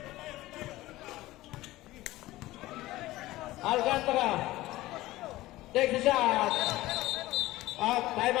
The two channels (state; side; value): quieter; right; 17.4 dB